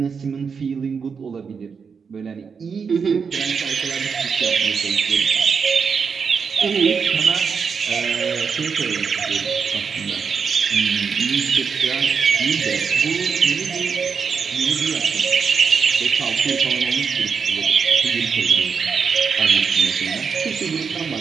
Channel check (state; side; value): quieter; left; 5.9 dB